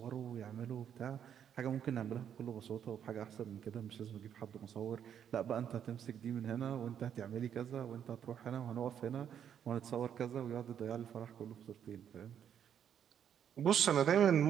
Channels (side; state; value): left; quieter; 8.9 dB